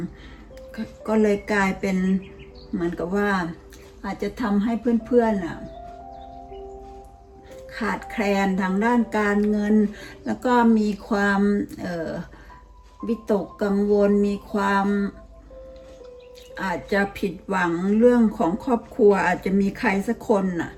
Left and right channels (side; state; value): both; identical; correlation 1.00